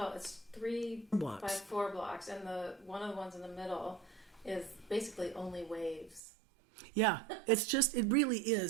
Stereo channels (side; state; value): left; drops out; at 6.2 s